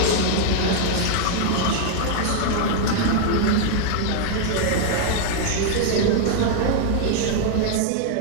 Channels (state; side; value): different; both; correlation -0.01